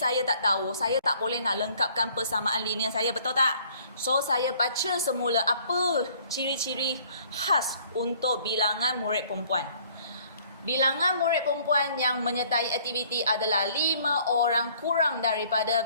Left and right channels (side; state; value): both; inverted; correlation -0.58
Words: tak tahu, saya tak boleh nak lengkapkan persamaan linear saya, betul tak? So, saya baca semula apa ciri-ciri khas untuk bilangan murid perempuan. Bilangan murid perempuan yang menyertai aktiviti adalah 5 orang kurang daripada